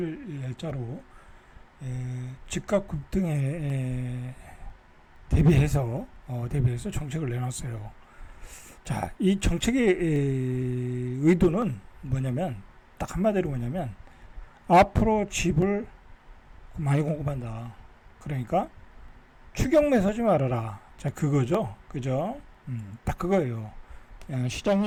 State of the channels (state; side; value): identical; both; correlation 1.00